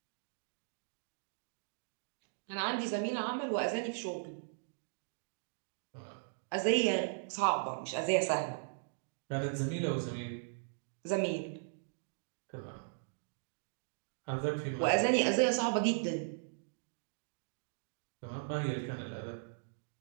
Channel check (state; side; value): silent; left; digital silence